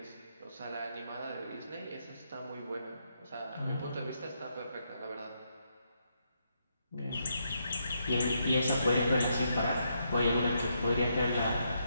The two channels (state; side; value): inverted; both; correlation -0.78